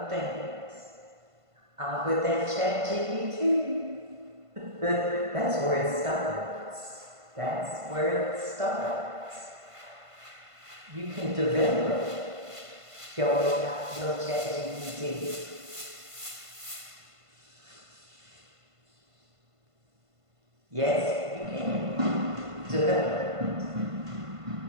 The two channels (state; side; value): late; left; 1.5 ms